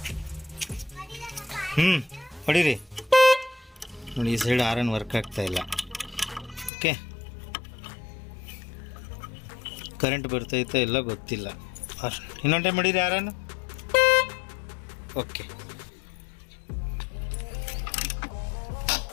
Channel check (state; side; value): drops out; right; at 6.7 s